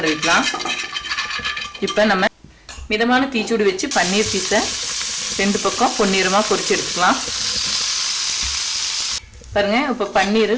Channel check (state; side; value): identical; both; correlation 1.00